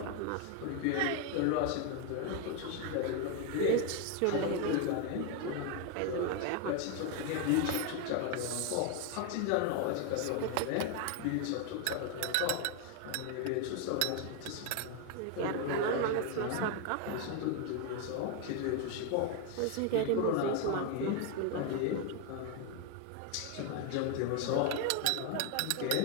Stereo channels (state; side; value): different; both; correlation 0.01